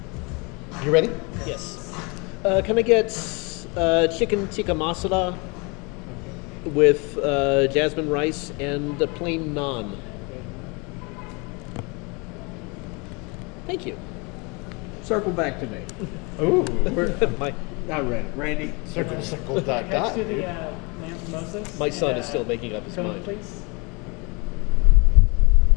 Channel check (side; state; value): right; quieter; 29.4 dB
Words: You ready? Yes. Can I get chicken tikka masala with jasmine rice and a plain naan? Thank you. Circle back to me. Ooh. my I read it. Randy. Circle, dot, Next dot. to the lamb samosas. my son and, is still making up his Conan, mind. please.